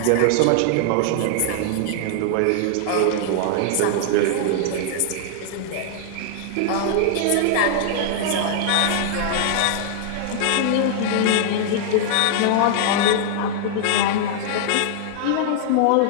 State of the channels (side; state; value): both; different; correlation -0.01